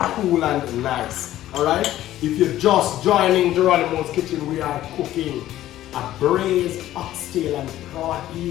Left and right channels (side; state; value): right; quieter; 13.7 dB